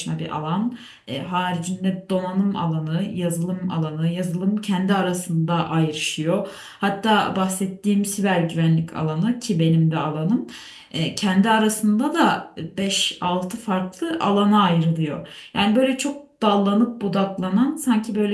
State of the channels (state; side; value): identical; both; correlation 1.00